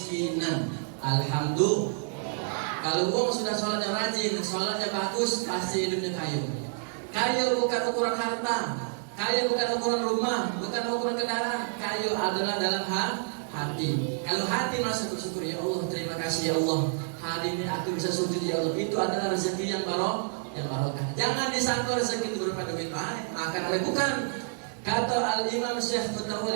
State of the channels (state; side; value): silent; left; digital silence